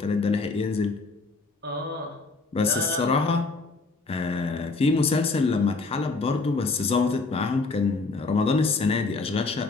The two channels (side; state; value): right; quieter; 3.8 dB